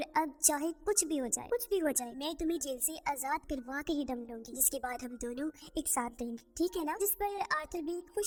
अब चाहे कुछ भी हो जाए मैं तुम्हें जेल से आजाद करवा के ही दम लूंगी, जिसके बाद हम दोनों एक साथ रहेंगे, ठीक है ना। जिस पर आर्थर भी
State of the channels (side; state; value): both; identical; correlation 1.00